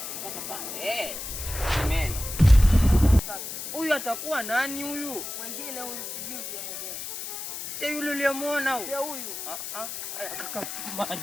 Amen. Huyu atakuwa nani huyu? Mwingine huyu sijui mwenyewe. Si yule uliyemwona huyu? Sio huyu. Kaka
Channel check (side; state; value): left; noise; hiss, 7 dB below the sound